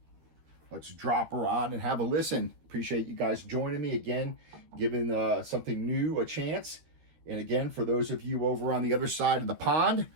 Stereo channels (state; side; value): late; left; 13 ms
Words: Let's drop her on and have a listen. Appreciate you guys joining me again, giving something new a chance. And again, for those of you over on the other side of the pond,